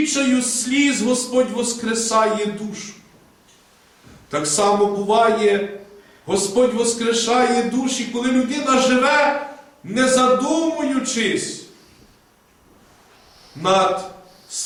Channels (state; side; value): identical; both; correlation 1.00